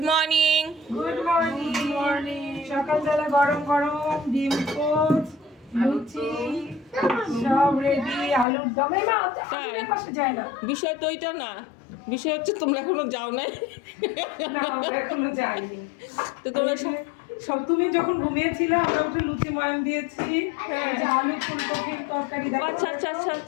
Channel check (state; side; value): drops out; right; at 8.5 s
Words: morning. Good morning. সকালবেলা গরম গরম ডিম পোস্ট, লুচি সব রেডি। আলুর দমে মা তাই? পাশে যায় না। বিষয় তো ওইটা না, বিষয় হচ্ছে তোমরা এখনো যাও নাই। না আমরা এখনো যাইনি। তো তোমরা সব তুমি যখন ঘুমিয়েছিলে আমরা একটু লুচি ময়ান দিয়েছি। হ্যাঁ। এই যে আলু ফুলকপির তরকারি দেখো। আচ্ছা আচ্ছা আচ্ছা